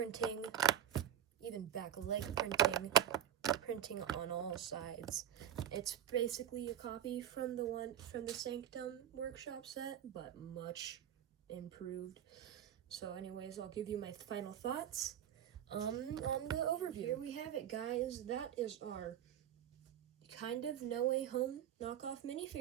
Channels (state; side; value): quieter; left; 10.2 dB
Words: even back leg printing on all sides. It's basically a copy from the Sanctum Workshop set, but much improved. So anyways, I'll give you my final thoughts on the overview. Here we have it, guys. That is our kind of No Way Home knockoff